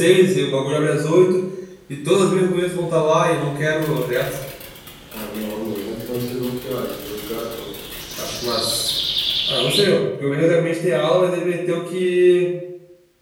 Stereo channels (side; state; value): both; identical; correlation 1.00